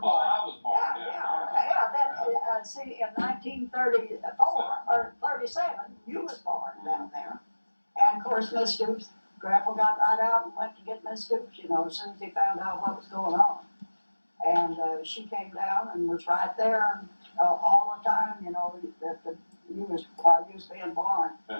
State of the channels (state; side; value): inverted; both; correlation -1.00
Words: I was born Yeah, down yeah. Then, see, in 1934 or 37, you was born down there. And of course, Miss Stoops, Grandpa got right out and went to get Miss Stoops, as soon as he found out what was going on. And she came down and was right there all the time, that you was while you was being born.